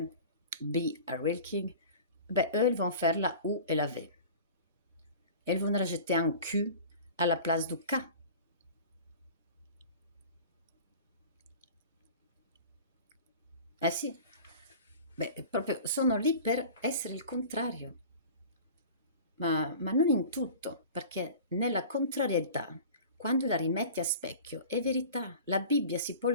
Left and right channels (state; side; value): inverted; both; correlation -0.40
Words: a Real King, ben eux ils vont faire la U et la V. Ils vont rajouter un Q à la place du K. Eh sì, beh, proprio sono lì per essere il contrario, ma non in tutto, perché nella contrarietà, quando la rimetti a specchio è verità. La Bibbia si può